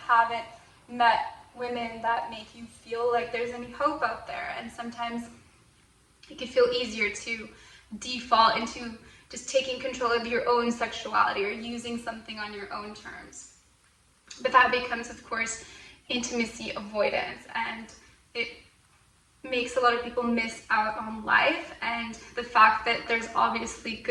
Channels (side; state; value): both; identical; correlation 1.00